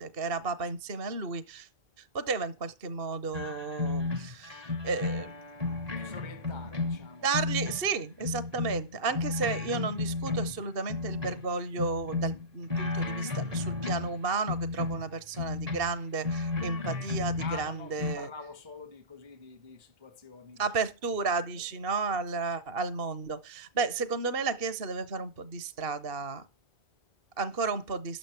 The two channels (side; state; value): left; late; 2.7 ms